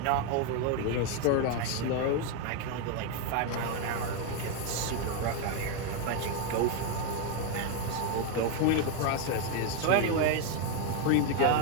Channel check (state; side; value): different; both; correlation 0.01